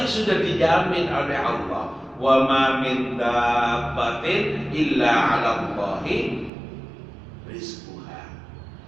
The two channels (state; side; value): drops out; left; at 6.5 s